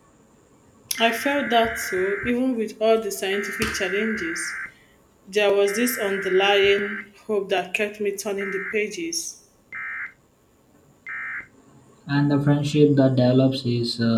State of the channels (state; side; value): identical; both; correlation 1.00